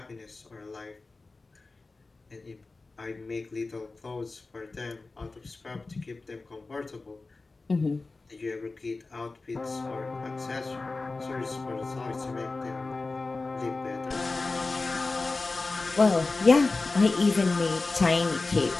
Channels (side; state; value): right; quieter; 3.6 dB